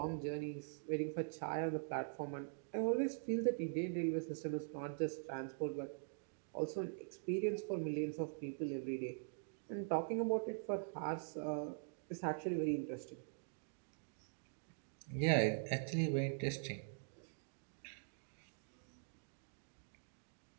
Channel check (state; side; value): silent; left; digital silence